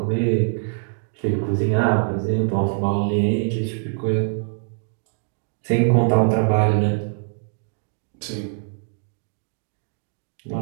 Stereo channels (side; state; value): left; silent; 63 dB below the other